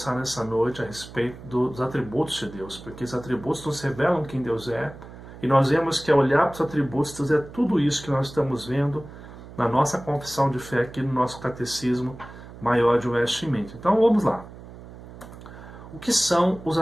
nessa noite a respeito dos atributos de Deus, porque os atributos nos revelam quem Deus é, e nós vemos que ao olhar para os atributos, Deus é tudo isso que nós estamos vendo na nossa confissão de fé aqui no nosso Catecismo Maior de Westminster. Então vamos lá. O que são os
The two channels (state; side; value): noise; right; hum, 16 dB below the sound